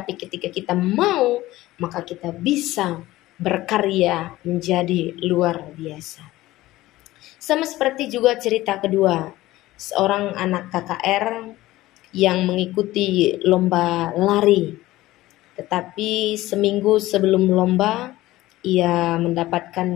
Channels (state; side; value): quieter; right; 17.0 dB